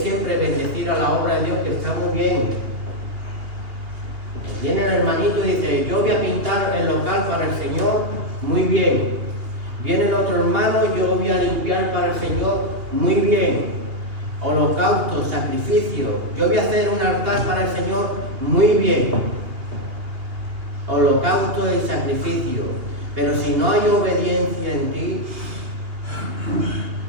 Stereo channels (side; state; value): left; late; 2.8 ms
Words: bendecir a la obra de Dios, que está muy bien. Viene el hermanito y dice: yo voy a pintar el local para el Señor, muy bien. Viene el otro hermano: yo voy a limpiar para el Señor, muy bien. Holocausto, sacrificio, yo voy a hacer un altar para el Señor, muy bien. Holocausto y sacrificio. Pero si no hay obediencia en ti,